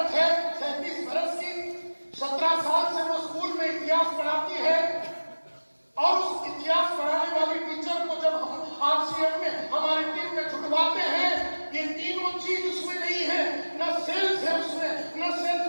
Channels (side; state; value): both; inverted; correlation -1.00